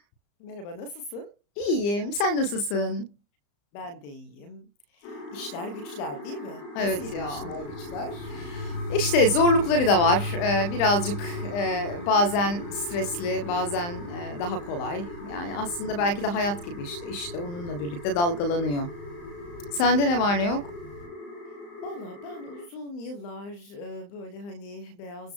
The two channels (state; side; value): late; right; 35 ms